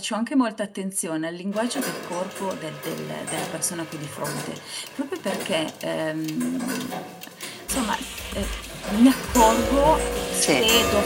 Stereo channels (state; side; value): identical; both; correlation 1.00